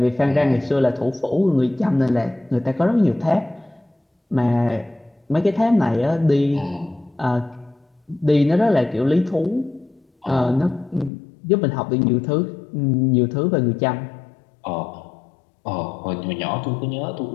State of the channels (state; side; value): drops out; right; at 11.1 s